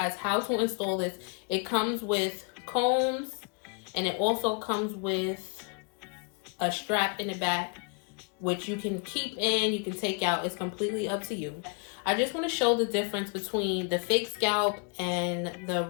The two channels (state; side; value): quieter; right; 35.9 dB